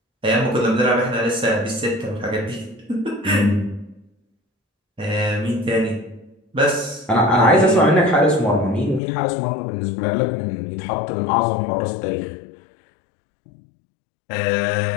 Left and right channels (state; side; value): drops out; right; at 9.0 s